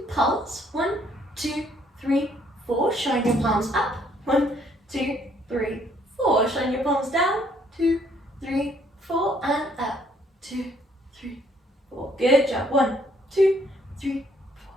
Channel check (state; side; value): normal; both; correlation 0.66